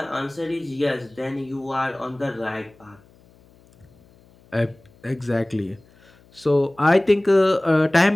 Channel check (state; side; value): noise; left; hum, 29 dB below the sound